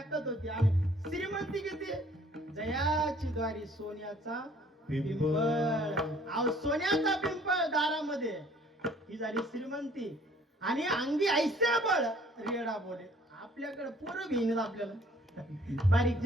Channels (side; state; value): both; normal; correlation 0.57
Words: होती. आणि श्रीमंती किती? जयाची द्वारी सोन्याचा पिंपळ. अहो सोन्याचा पिंपळ दारामध्ये, ही झाली श्रीमंती. आणि अंगी ऐसे बळ रेडा बोले. आपल्याकडे पोरं घेईन आपल्याला, बारीक